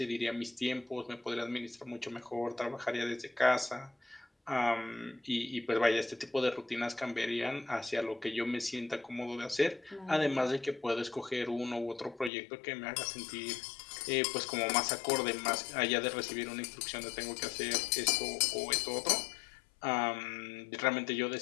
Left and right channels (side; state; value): right; drops out; at 12.3 s